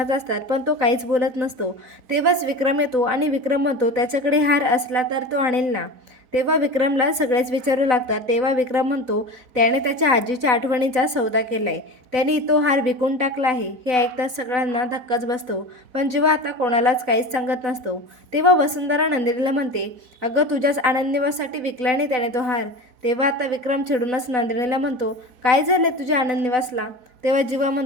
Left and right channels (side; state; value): left; late; 4.0 ms